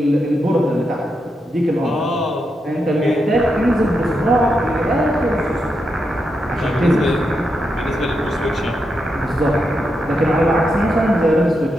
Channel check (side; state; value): both; normal; correlation 0.84